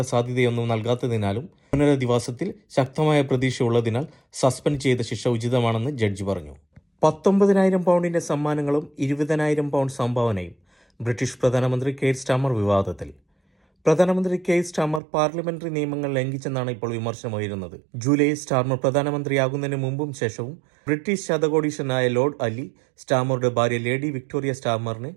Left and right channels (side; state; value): left; drops out; at 15.0 s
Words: സാധ്യതയൊന്നും നൽകാത്തതിനാലും പുനരധിവാസത്തിൽ ശക്തമായ പ്രതീക്ഷയുള്ളതിനാൽ സസ്പെൻഡ് ചെയ്ത ശിക്ഷ ഉചിതമാണെന്ന് ജഡ്ജി പറഞ്ഞു. 19,000 പൗണ്ടിന്റെ സമ്മാനങ്ങളും 20,000 പൗണ്ട് സംഭാവനയും. ബ്രിട്ടീഷ് പ്രധാനമന്ത്രി കെയർ സ്റ്റാമർ വിവാദത്തിൽ. പ്രധാനമന്ത്രി കെയർ സ്റ്റാമർ പാർലമെന്ററി നിയമങ്ങൾ ലംഘിച്ചെന്നാണ് ഇപ്പോൾ വിമർശനമുയരുന്നത്. ജൂലൈയിൽ സ്റ്റാമർ പ്രധാനമന്ത്രിയാകുന്നതിന് മുമ്പും ശേഷവും ബ്രിട്ടീഷ് ശതകോടീശ്വരനായ ലോർഡ് അലി സ്റ്റാമറുടെ ഭാര്യ ലേഡി വിക്ടോറിയ സ്റ്റാമറിന്